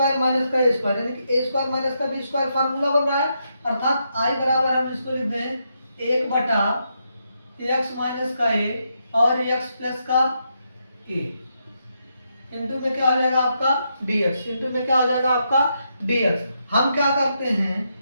माइनस का ए स्क्वायर यानी कि ए स्क्वायर माइनस का बी स्क्वायर फार्मूला बन रहा है, अर्थात आई बराबर हम इसको लिख दें 1/x माइनस का ए और x प्लस का ए इंटू में क्या हो जाएगा आपका dx, इंटू में क्या हो जाएगा आपका dx। हम क्या करते हैं,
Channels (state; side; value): inverted; both; correlation -0.81